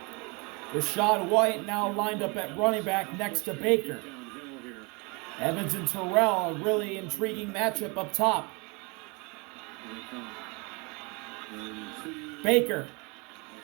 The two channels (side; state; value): left; quieter; 29.4 dB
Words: Rashad White now lined up at running back next to Baker. Downhill here. Evans and Terrell, a really intriguing matchup up top. Here they come. Baker,